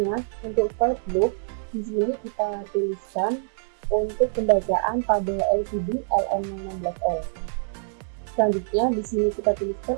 untuk for loop di sini kita tuliskan untuk pembacaan pada LCD LM16L. Selanjutnya di sini kita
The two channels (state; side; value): silent; left; digital silence